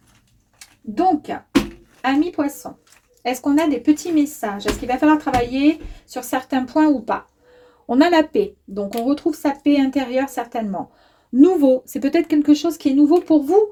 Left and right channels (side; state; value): both; identical; correlation 1.00